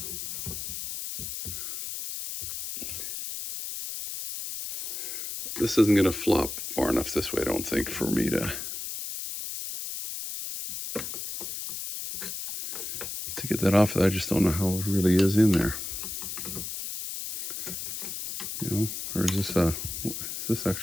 this isn't going to flop far enough this way, I don't think, for me to get that off. I just don't know how it really is in there. You know, or is this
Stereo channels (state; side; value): noise; left; hiss, 6 dB below the sound